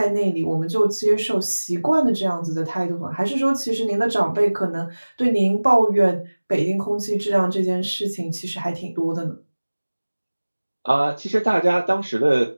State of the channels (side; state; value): both; inverted; correlation -1.00